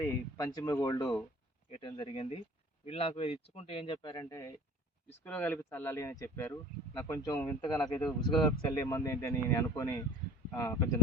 పంచమి గోల్డ్ వేయటం జరిగింది. వీళ్ళు నాకు ఇది ఇచ్చుకుంటే ఏం చెప్పారంటే ఇసుకలో కలిపి చల్లాలి అని చెప్పారు. నాకు కొంచెం వింతగా నాకేదో ఇసుకలో కలిపి చల్లే మంది ఏంటి అని నేను అనుకొని కొంచెం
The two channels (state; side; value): normal; both; correlation 0.46